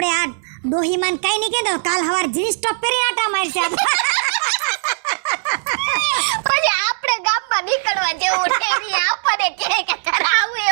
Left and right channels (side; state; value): left; silent; digital silence